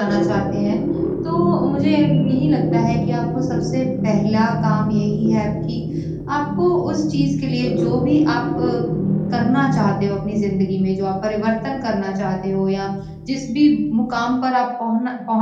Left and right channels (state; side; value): identical; both; correlation 1.00